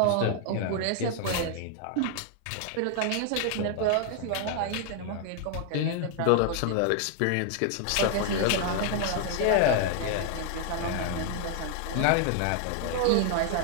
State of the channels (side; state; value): both; different; correlation 0.00